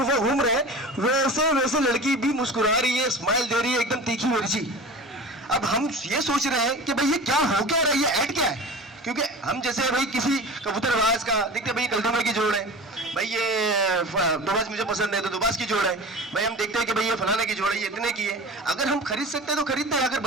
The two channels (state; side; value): normal; both; correlation 0.35